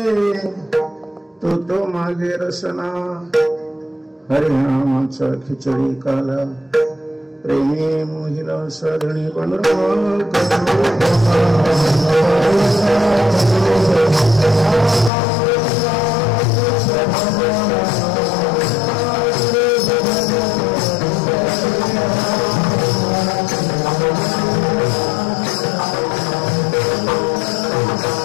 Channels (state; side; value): drops out; right; at 15.1 s